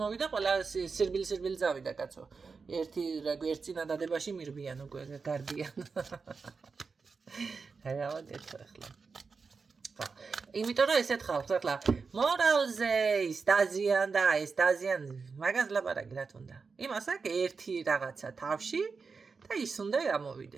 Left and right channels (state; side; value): quieter; left; 4.9 dB